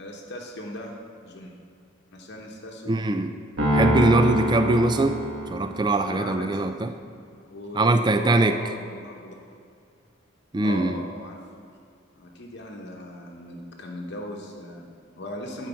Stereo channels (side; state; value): both; normal; correlation 0.60